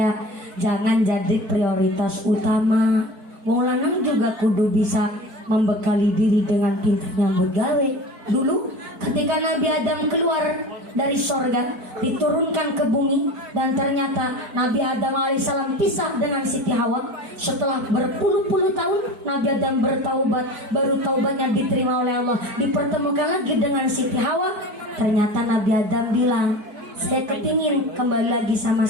jangan jadi prioritas utama. Wong lanang juga kudu bisa membekali diri dengan pintarnya begawe. Dulu ketika Nabi Adam keluar dari sorga, diturunkan ke bumi, dan ternyata Nabi Adam alaihissalam pisah dengan Siti Hawa. Setelah berpuluh-puluh tahun Nabi Adam bertaubat, baru taubatnya diterima oleh Allah, dipertemukan lagi dengan Siti Hawa. Ternyata Nabi Adam bilang, saya kepingin kembali lagi sama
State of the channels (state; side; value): late; left; 4.6 ms